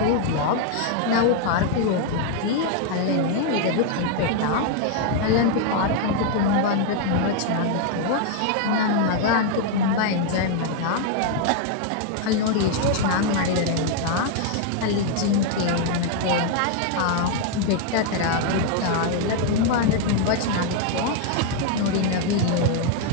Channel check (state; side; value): different; both; correlation 0.00